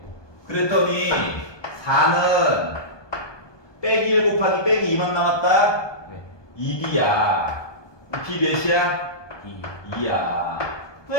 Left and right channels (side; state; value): right; late; 1.2 ms